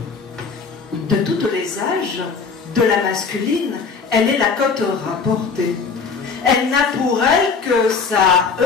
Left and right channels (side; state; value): right; quieter; 5.2 dB